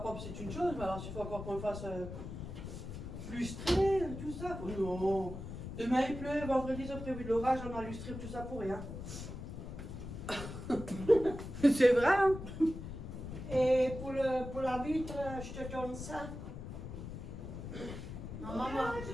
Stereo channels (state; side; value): noise; left; rumble, 9 dB below the sound